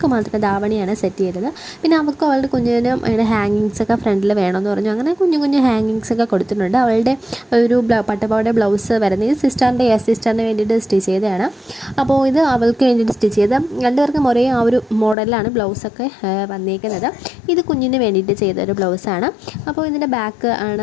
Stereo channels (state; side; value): drops out; right; at 15.2 s